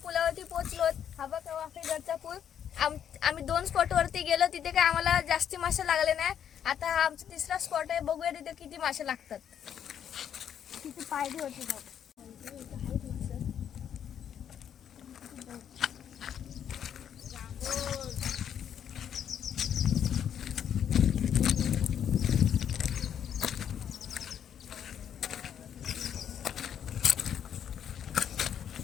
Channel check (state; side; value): quieter; right; 9.0 dB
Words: पोहोचलो. हा बघा वाफेघरचा पूल. आम्ही 2 स्पॉट वरती गेलो, तिथे काय आम्हाला जास्ती मासे लागले नाही. आता हा आमचा तिसरा स्पॉट आहे, बघूया तिथे किती मासे लागतात. किती पायरी होती बघ.